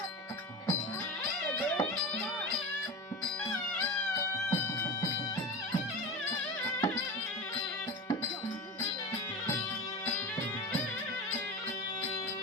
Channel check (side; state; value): both; normal; correlation 0.28